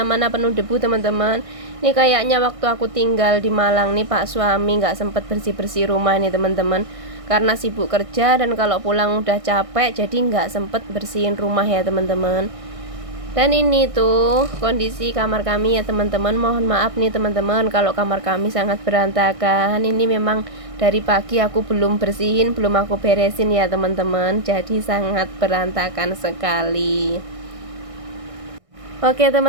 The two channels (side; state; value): left; late; 1.6 ms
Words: penuh debu teman-teman. Ini kayaknya waktu aku tinggal di Malang nih Pak suami nggak sempet bersih-bersih rumah nih teman-teman. Karena sibuk kerja dan kalau pulang udah capek, jadi nggak sempet bersihin rumah ya teman-teman. Dan ini tuh kondisi kamar kami ya teman-teman. Mohon maaf nih teman-teman kalau kamar kami sangat berantakan. Ini memang dari pagi aku belum bersihin, belum aku beresin ya teman-teman. Jadi sangat berantakan sekali. Oke